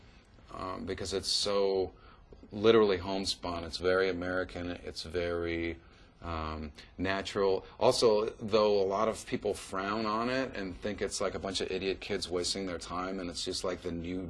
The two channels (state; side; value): identical; both; correlation 1.00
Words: because it's so literally homespun. It's very American. It's very natural. Also, though a lot of people frown on it and think it's like a bunch of idiot kids wasting their time, and it's just like the new